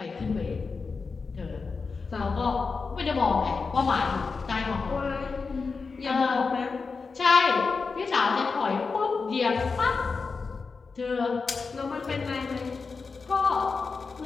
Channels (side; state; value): right; quieter; 4.7 dB